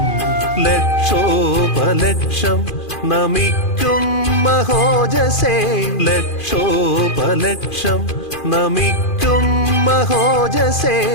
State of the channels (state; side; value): late; right; 2.4 ms